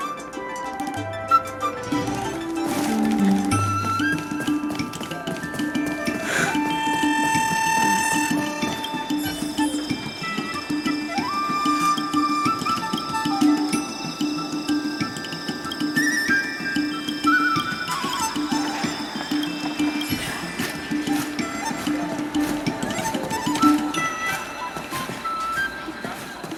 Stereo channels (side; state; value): both; identical; correlation 1.00